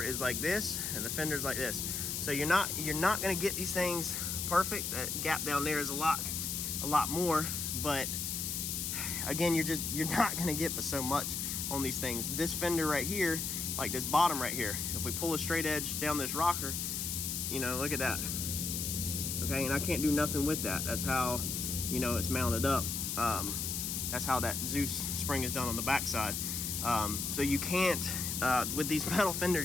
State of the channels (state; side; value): noise; left; hiss, 2 dB below the sound